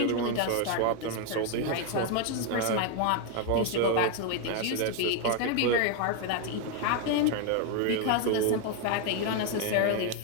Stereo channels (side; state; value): both; different; correlation 0.01